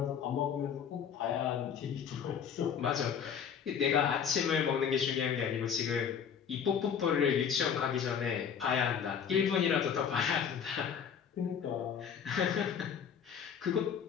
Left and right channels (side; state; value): right; quieter; 7.6 dB